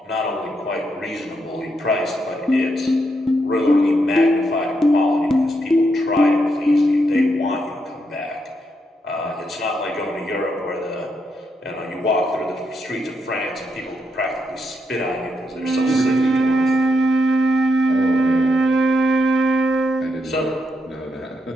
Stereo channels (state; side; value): normal; both; correlation 0.80